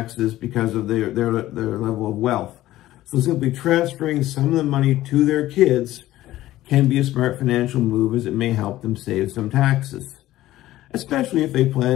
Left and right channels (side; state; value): right; quieter; 15.2 dB